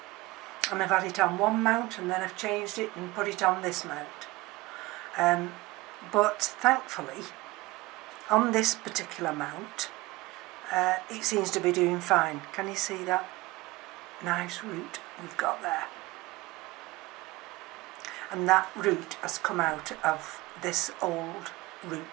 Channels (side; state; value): left; quieter; 20.5 dB